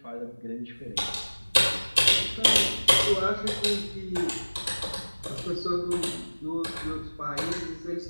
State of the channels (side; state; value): both; inverted; correlation -1.00